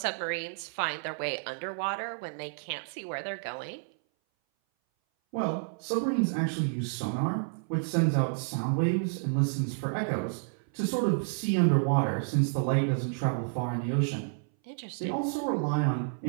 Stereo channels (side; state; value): left; silent; 58 dB below the other